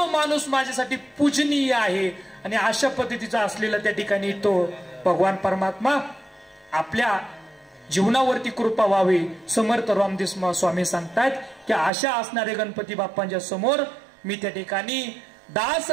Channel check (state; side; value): drops out; left; at 11.9 s